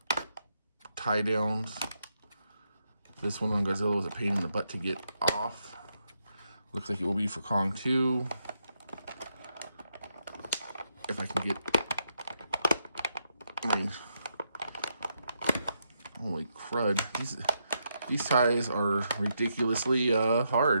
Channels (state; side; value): inverted; both; correlation -0.80